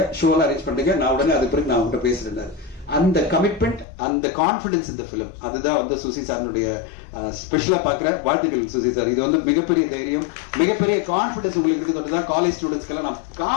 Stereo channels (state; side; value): drops out; right; at 3.9 s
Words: ஷோலாம் அரேஞ்ச் பண்ணிடுங்க, நான் உடனே அது பிறகு நான் உங்ககிட்ட பேசுறேன். அந்த கமிட்மெண்ட், அந்த கான்பிடன்ஸ் இந்த பிலிம், அதுதான் வந்து சுசி சாருடைய ஸ்பெஷலா பாக்குற வாழ்த்துக்கள் சுசி சார். இது வந்து மிகப்பெரிய தைரியம், மிகப்பெரிய கான்பிடன்ஸ் உங்களுக்கு இருக்கிறது. காலேஜ் ஸ்டூடெண்ட்ஸ்க்கெல்லாம் நான்